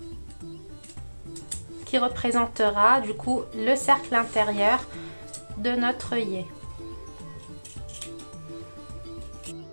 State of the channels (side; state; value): both; inverted; correlation -1.00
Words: qui représentera du coup le cercle intérieur de notre œillet.